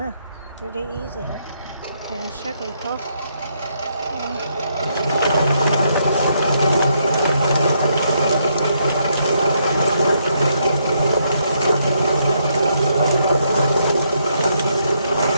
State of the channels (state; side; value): inverted; both; correlation -0.75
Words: ha. Really easy. Để chắc rồi thôi.